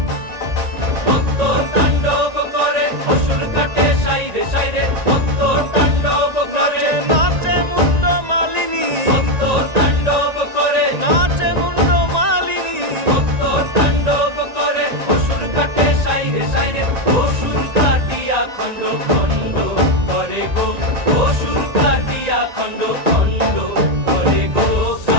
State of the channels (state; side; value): late; left; 1.9 ms